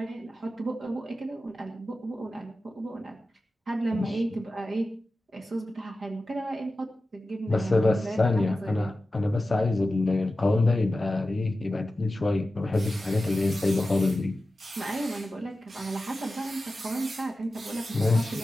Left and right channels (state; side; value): normal; both; correlation 0.94